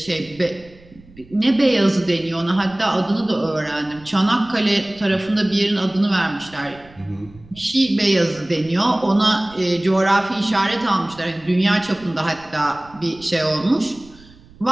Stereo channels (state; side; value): noise; right; rumble, 24 dB below the sound